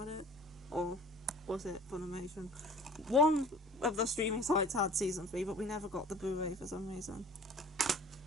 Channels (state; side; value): normal; both; correlation 0.46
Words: it, or was it Funimation? One of the streaming sites had Season 3, but we never got the Blu-ray for some reason.